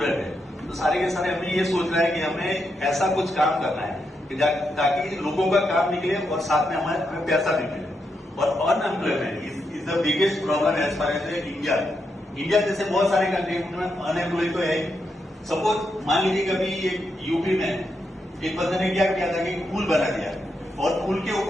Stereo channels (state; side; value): normal; both; correlation 0.83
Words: है, तो सारे के सारे हमें ये सोचना है कि हमें ऐसा कुछ काम करना है कि ताकि लोगों का काम निकले और साथ में हमें पैसा भी मिले। और unemployment is the biggest problem as far as India जैसे बहुत सारे कंट्री में अनएम्प्लॉय तो है। सपोज मान लीजिए कभी एक यूपी में एक बंदे ने क्या किया था कि पुल बना दिया और पुल के